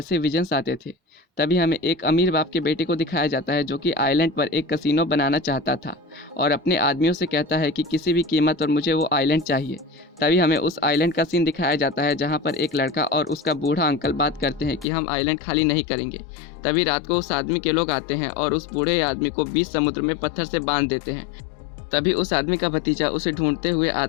विजन्स आते थे। तभी हमें एक अमीर बाप के बेटे को दिखाया जाता है जो कि आइलैंड पर एक कसिनो बनाना चाहता था और अपने आदमियों से कहता है कि किसी भी कीमत और मुझे वो आइलैंड चाहिए। तभी हमें उस आइलैंड का सीन दिखाया जाता है जहाँ पर एक लड़का और उसका बूढ़ा अंकल बात करते हैं कि हम आइलैंड खाली नहीं करेंगे। तभी रात को उस आदमी के लोग आते हैं और उस बूढ़े आदमी को बीच समुद्र में पत्थर से बांध देते हैं। तभी उस आदमी का भतीजा उसे ढूंढते हुए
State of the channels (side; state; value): right; drops out; at 14.9 s